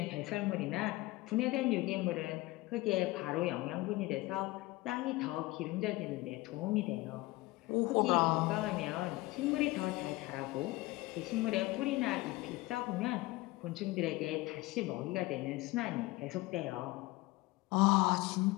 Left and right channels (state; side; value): quieter; right; 20.2 dB